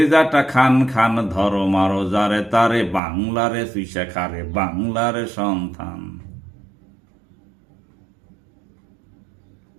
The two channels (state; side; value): drops out; left; at 3.0 s